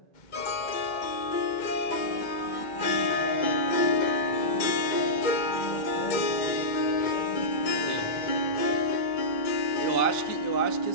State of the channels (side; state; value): right; late; 2.1 ms